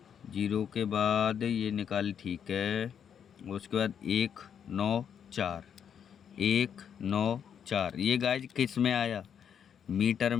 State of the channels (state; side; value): quieter; right; 8.1 dB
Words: 0 के बाद ये निकाल, ठीक है। उसके बाद 1 9 4, 1 9 4। ये गाइज किस में आया? मीटर